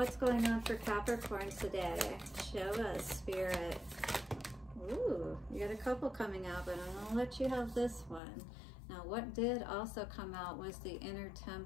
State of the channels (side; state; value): right; drops out; at 8.2 s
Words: going on for Capricorn today? Show us, Spirit. Ooh, you got a couple coming out, but I'm gonna let you have this one. Now, what did also come out was the inner